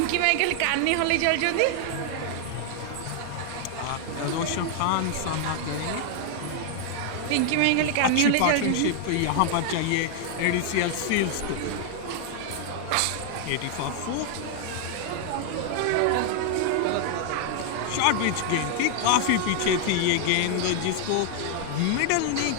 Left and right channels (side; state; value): both; different; correlation 0.00